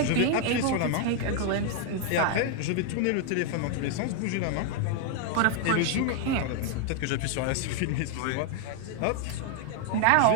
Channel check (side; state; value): both; different; correlation 0.00